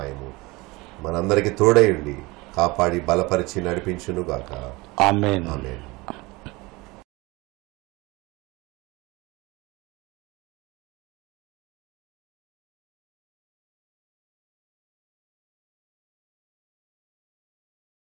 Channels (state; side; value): quieter; left; 23.0 dB